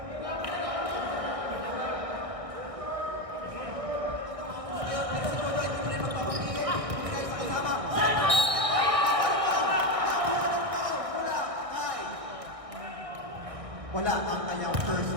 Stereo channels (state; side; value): late; left; 1.8 ms